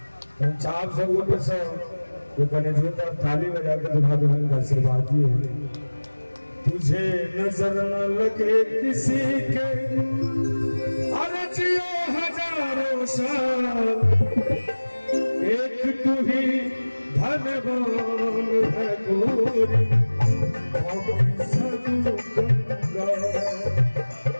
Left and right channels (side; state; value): both; inverted; correlation -1.00